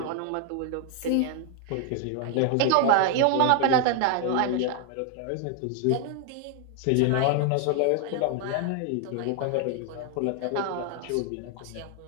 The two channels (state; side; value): different; both; correlation 0.00